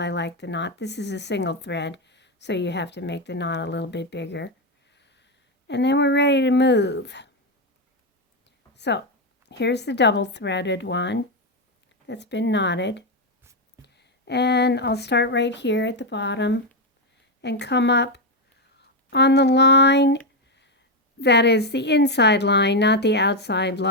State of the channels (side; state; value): both; normal; correlation 0.06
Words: like the knot. This is a single thread, so you have to make the knot a little bit bigger. And then we're ready to move. So here's the double threaded one that's been knotted. And I'll start right here at the bottom and come up on the line that is the inside line, not the outside